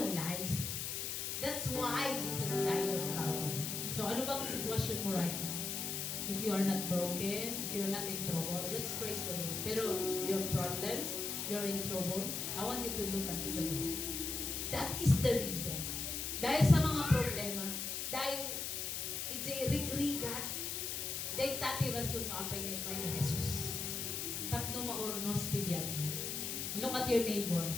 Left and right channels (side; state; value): left; noise; hiss, 3 dB below the sound